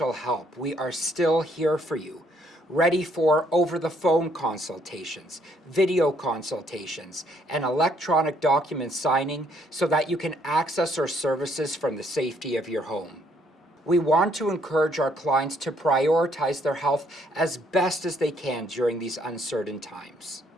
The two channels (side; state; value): both; normal; correlation 0.68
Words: help, we are still here for you, ready for over-the-phone consultations, video consultations, and electronic document signing so that you can access our services from the safety of your home. We want to encourage our clients to prioritize their health as best as they can during these uncertain times.